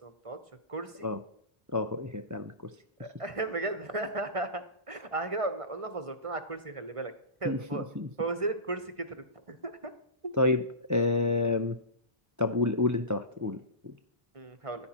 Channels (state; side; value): late; left; 1.5 ms